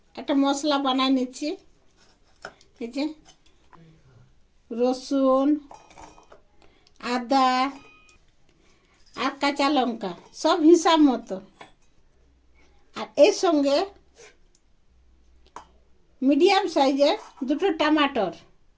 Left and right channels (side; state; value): both; identical; correlation 1.00